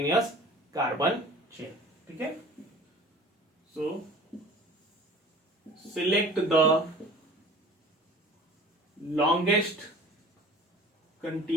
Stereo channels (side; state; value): both; normal; correlation 0.44